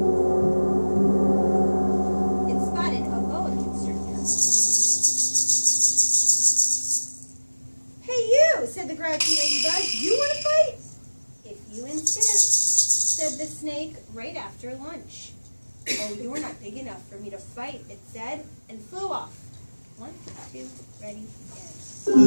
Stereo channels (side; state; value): both; inverted; correlation -1.00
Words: it spotted a boa constrictor. Hey, you, said the grouchy ladybug, you want to fight? If you insist, said the snake, right after lunch. Oh, you're not big enough for me to fight, it said, and flew off. 1, 2, ready, and...